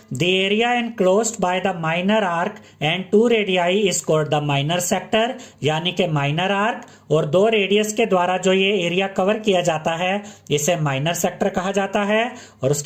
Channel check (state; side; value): identical; both; correlation 1.00